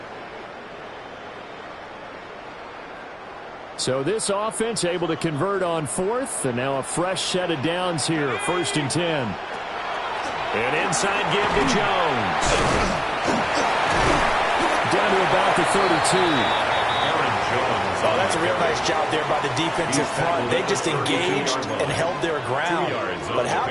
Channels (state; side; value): identical; both; correlation 1.00